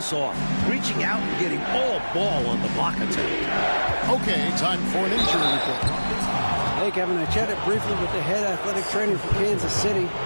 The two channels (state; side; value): inverted; both; correlation -1.00